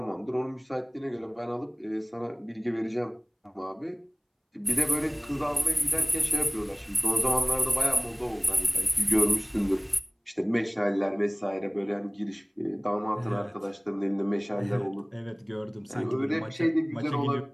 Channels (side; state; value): both; identical; correlation 1.00